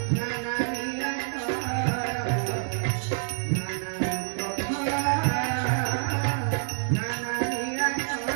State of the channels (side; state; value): left; silent; digital silence